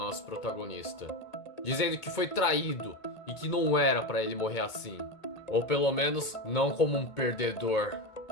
protagonista, dizendo que foi traído e que não era pra ele morrer assim, ou pelo menos não como um perdedor.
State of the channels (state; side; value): late; right; 2.2 ms